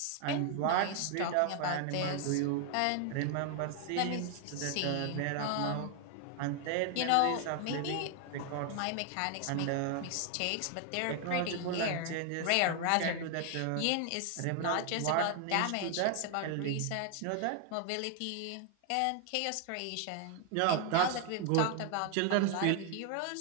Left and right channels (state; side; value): different; both; correlation 0.00